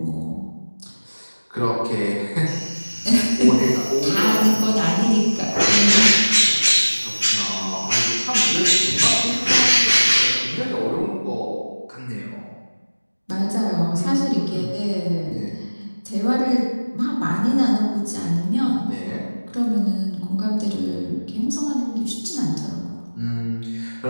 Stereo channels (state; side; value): inverted; both; correlation -1.00